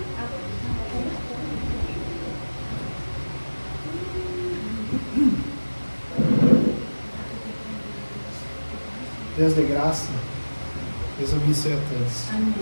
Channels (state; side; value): inverted; both; correlation -1.00